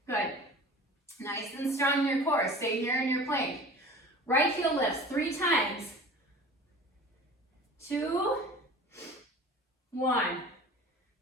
Good. Nice and strong in your core. Stay here in your plank. Right heel lifts 3 times. 2, 1.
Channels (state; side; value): normal; both; correlation 0.41